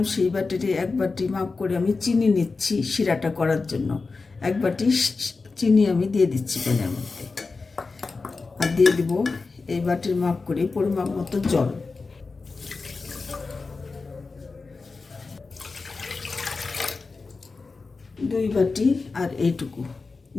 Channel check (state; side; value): quieter; right; 4.1 dB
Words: সেই বাটিতে 1 বাটি মাপ করে আমি চিনি নিচ্ছি শিরাটা করার জন্য। 1 বাটি চিনি আমি দিয়ে দিচ্ছি প্যানের মধ্যে, আর দিয়ে দিব এই বাটির মাপ করে পরিমাপ মতো জল। দুই বাটি আর এইটুকু